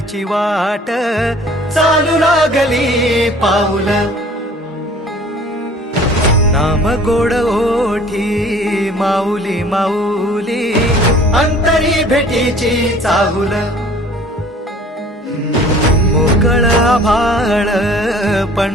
वाट चालू लागली पाऊल नाम गोड ओठी माऊली माऊली अंतरी भेटीची चाहुल मोकळ आभाळ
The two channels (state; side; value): normal; both; correlation 0.50